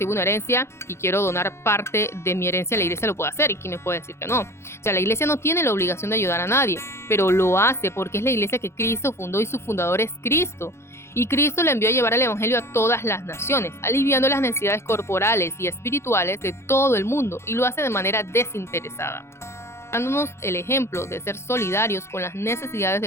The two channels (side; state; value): right; late; 0.13 ms